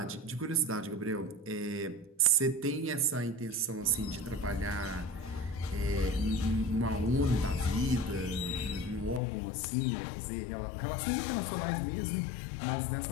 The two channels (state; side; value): drops out; right; at 9.2 s